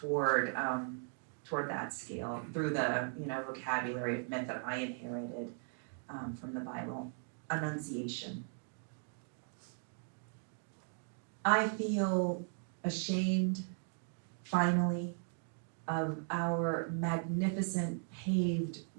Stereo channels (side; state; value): left; silent; 52 dB below the other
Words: that scale through the vocabulary of myth that I inherited from the Bible. Annunciation. I feel ashamed, finally, of our magnificent paved